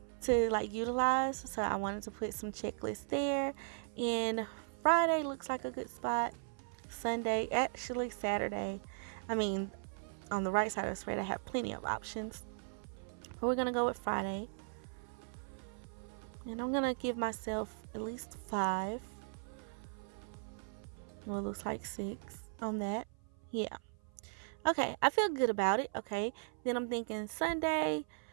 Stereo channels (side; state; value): left; silent; 53 dB below the other